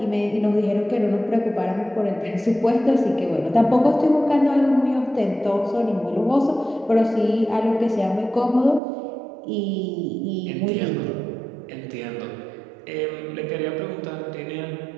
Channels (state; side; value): drops out; left; at 8.8 s